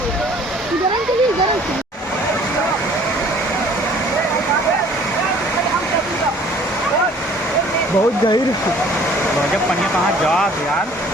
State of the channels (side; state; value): both; normal; correlation 0.54